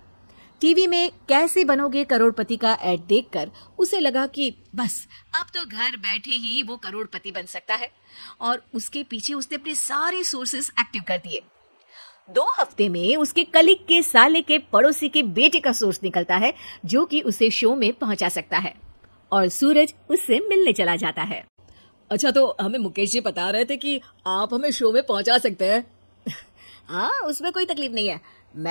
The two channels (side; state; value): both; inverted; correlation -1.00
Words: टीवी में कैसे बनोगे करोड़पति का ऐड देखकर उसे लगा कि बस अब तो घर बैठे ही वो करोड़पति बन सकता है, और उसके पीछे उसने अपने सारे सोर्सेस एक्टिव कर दिए। 2 हफ्ते में उसके कलीग के साले के पड़ोसी के बेटे का सोर्स निकलता है जो कि उसे शो में पहुंचा सकता है, और सूरज उससे मिलने चला जाता है। अच्छा, तो हमें मुकेश जी बता रहे थे कि आप हमें शो में पहुंचा सकते हैं। हाँ, उसमें कोई तकलीफ नहीं है।